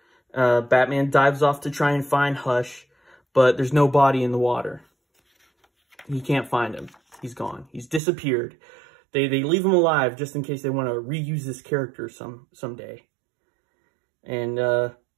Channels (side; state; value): left; drops out; at 8.0 s